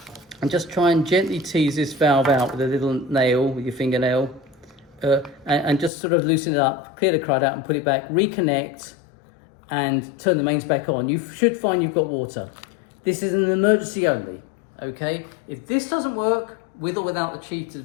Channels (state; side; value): drops out; right; at 5.9 s